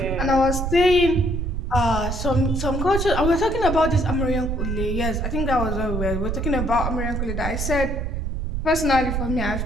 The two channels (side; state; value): right; noise; rumble, 2 dB below the sound